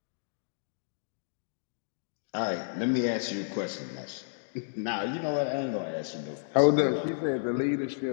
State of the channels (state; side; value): silent; right; digital silence